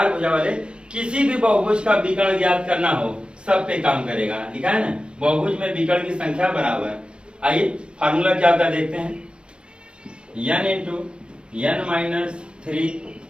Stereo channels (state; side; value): late; left; 0.054 ms